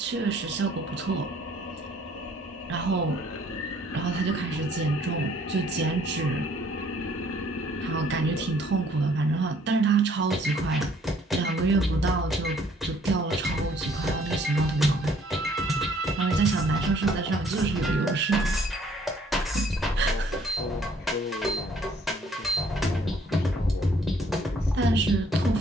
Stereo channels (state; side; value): normal; both; correlation 0.61